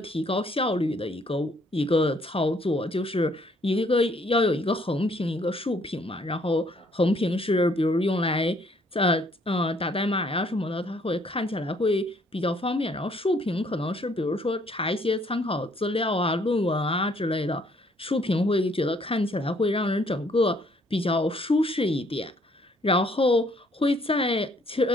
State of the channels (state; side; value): normal; both; correlation 0.64